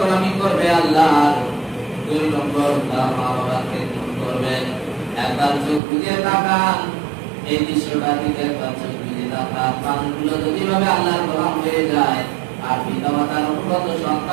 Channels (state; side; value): drops out; left; at 5.8 s